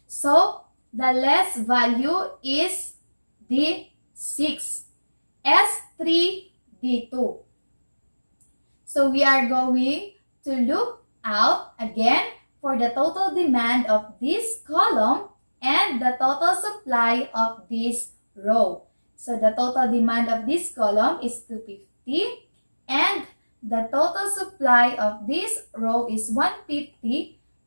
So, the less value is the 6, S3, D2. So, we are going to look out again for the total demand of this column and the total supply of this row. So, the total demand of this column is 250 and the total supply of this row is 150.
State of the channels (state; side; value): inverted; both; correlation -1.00